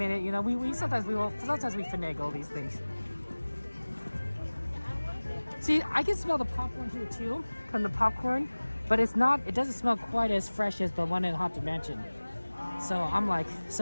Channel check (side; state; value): both; inverted; correlation -1.00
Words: you know, sometimes we finagle these things. See, I can smell the popcorn here too, from the popcorn, but it doesn't smell quite as fresh as the one in Haunted Mansion. So I'm like,